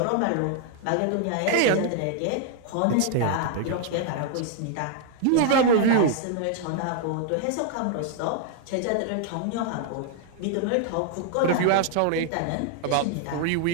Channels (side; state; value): both; different; correlation 0.00